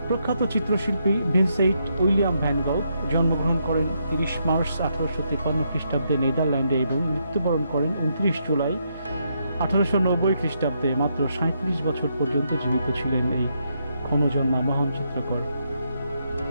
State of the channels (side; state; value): both; inverted; correlation -0.78